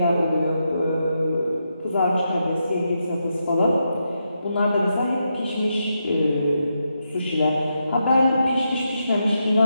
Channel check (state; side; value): inverted; both; correlation -0.84